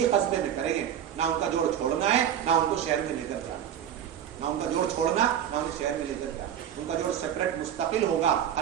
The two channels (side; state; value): left; quieter; 9.7 dB